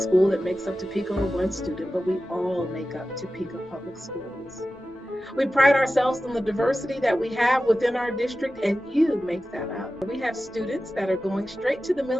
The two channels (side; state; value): both; normal; correlation 0.94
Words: that makes up Topeka or one student, but we all make up Topeka Public Schools. We pride ourselves on the diversity that we have within our district, and you make that up. We have students that are going straight to the